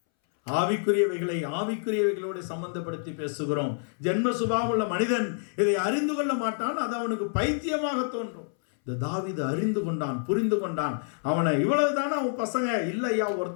ஆவிக்குரியவைகளை ஆவிக்குரியவைகளோடு சம்பந்தப்படுத்தி பேசுகிறோம். ஜென்ம சுபாவமுள்ள மனிதன் இதை அறிந்து கொள்ள மாட்டான். அது அவனுக்கு பைத்தியமாக தோன்றும். இந்த தாவீது அறிந்து கொண்டான், புரிந்து கொண்டான். அவனை இவ்வளவுதானே அவன் பசங்க, இல்லையா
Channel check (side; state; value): right; silent; 60 dB below the other